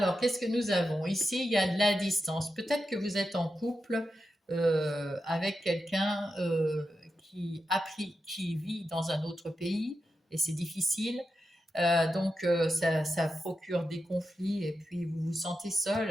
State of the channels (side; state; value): both; normal; correlation 0.89